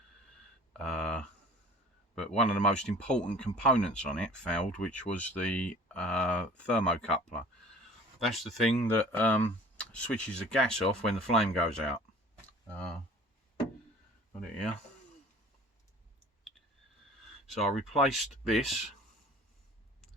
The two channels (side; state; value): both; normal; correlation 0.46